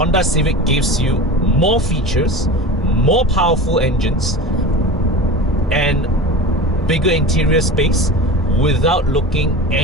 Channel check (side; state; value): both; normal; correlation 0.32